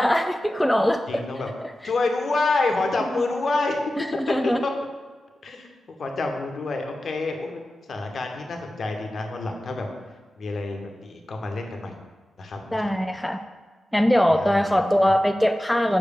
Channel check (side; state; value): both; normal; correlation 0.94